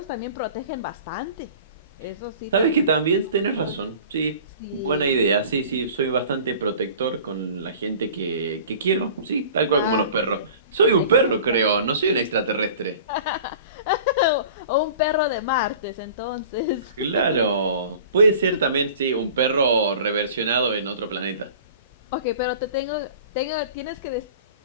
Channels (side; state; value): both; inverted; correlation -0.43